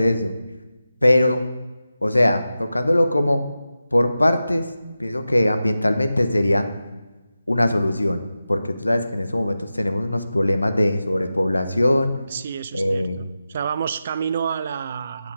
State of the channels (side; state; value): both; inverted; correlation -0.92